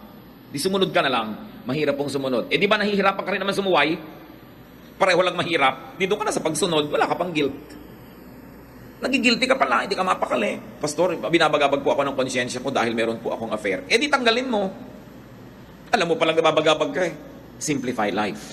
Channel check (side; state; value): both; identical; correlation 1.00